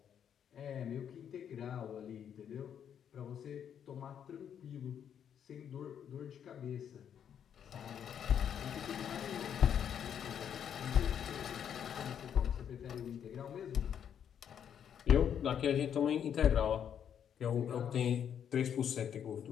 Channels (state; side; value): quieter; right; 8.7 dB